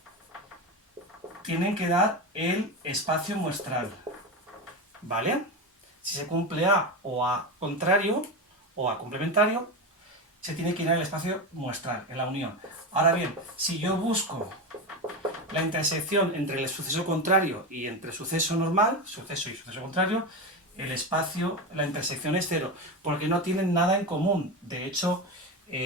tienen que dar el espacio muestral, ¿vale? Si se cumple A o A contrario o A complementario, se tiene que ir al espacio muestral, en la unión. Ahora bien, si yo busco la intersección entre el suceso contrario y entre suceso normal, suceso y suceso contrario, el espacio, la intersección es cero, porque no tienen nada en común. De hecho,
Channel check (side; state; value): both; normal; correlation 0.19